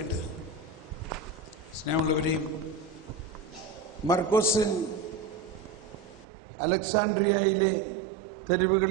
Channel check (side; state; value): left; drops out; at 6.2 s